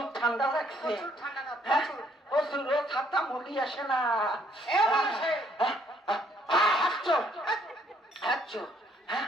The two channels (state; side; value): normal; both; correlation 0.66